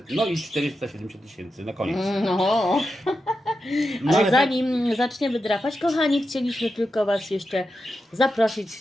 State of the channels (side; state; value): both; normal; correlation 0.89